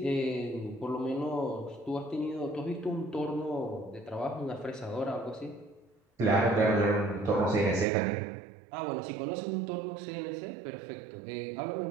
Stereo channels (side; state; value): left; drops out; at 7.9 s